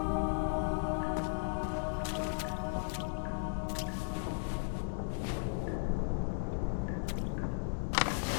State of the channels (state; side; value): silent; right; 54 dB below the other